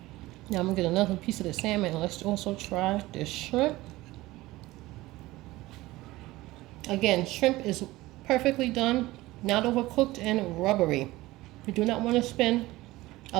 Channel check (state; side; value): quieter; left; 18.6 dB